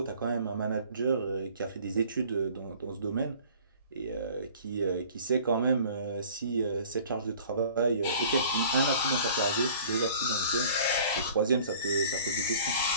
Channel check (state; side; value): inverted; both; correlation -0.50